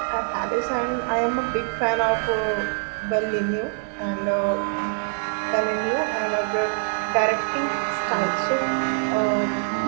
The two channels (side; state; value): left; silent; digital silence